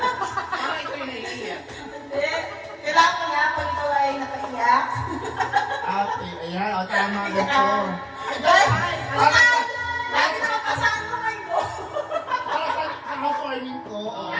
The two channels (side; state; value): both; identical; correlation 1.00